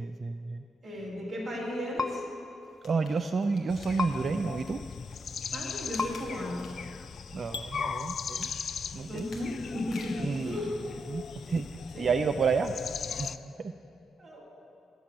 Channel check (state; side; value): normal; both; correlation 0.82